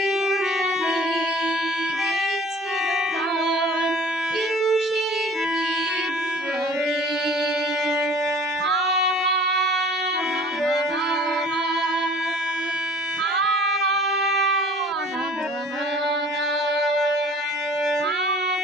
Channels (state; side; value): normal; both; correlation 0.48